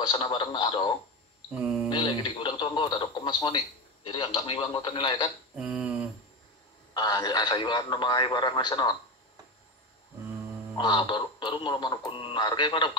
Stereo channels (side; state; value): both; normal; correlation 0.20